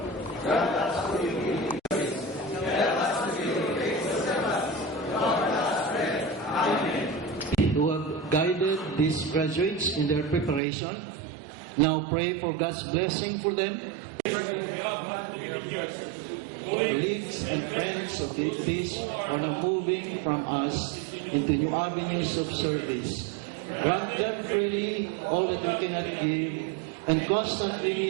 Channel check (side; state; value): left; drops out; at 10.6 s